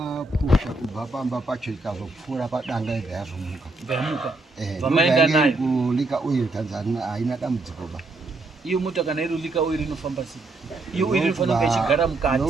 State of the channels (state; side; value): quieter; left; 3.1 dB